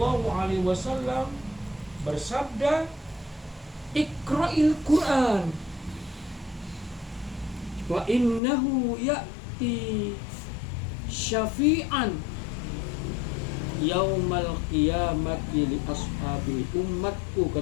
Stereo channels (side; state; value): right; drops out; at 8.4 s